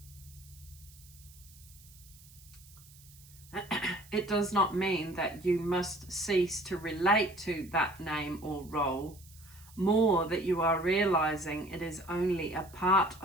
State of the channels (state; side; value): noise; right; hiss, 23 dB below the sound